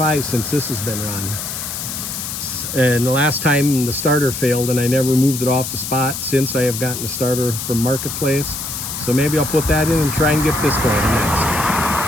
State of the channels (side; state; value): left; noise; hiss, 6 dB below the sound